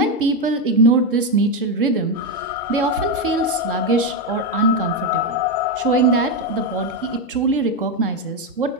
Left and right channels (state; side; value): normal; both; correlation 0.08